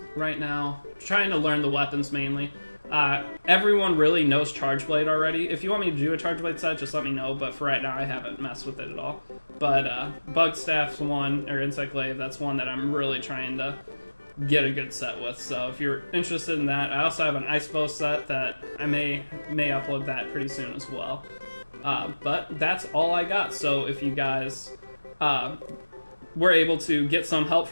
right now, trying to learn the weapons mainly. Everyone really knows Charge Blade already. If you want me to do a Charge Blade set, just let me know, but for right now I haven't messed with it at all. But Bug Staff's one, or Insect Glaive, that's one that I'm really trying to get a good set with. So if you're interested in that, I also have an Ice Bow set that I may upload that pretty soon as well. But that's all I got. So if you guys were able to get some help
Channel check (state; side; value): inverted; both; correlation -1.00